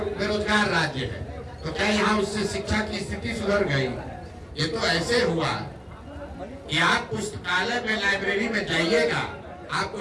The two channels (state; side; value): identical; both; correlation 1.00